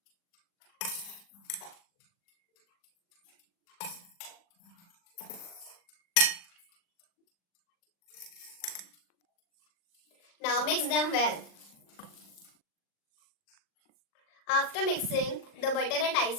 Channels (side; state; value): right; late; 40 ms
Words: Now mix them well. After mixing the butter and